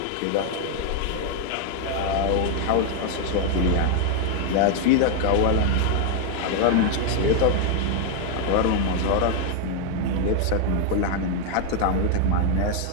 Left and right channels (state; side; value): different; both; correlation 0.00